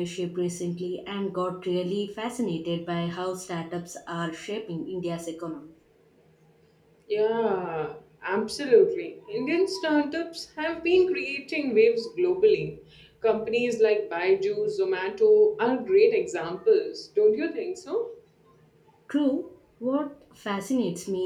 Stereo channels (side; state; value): both; identical; correlation 1.00